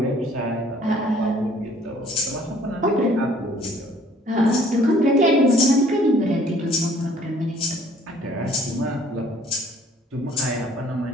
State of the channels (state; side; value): normal; both; correlation 0.57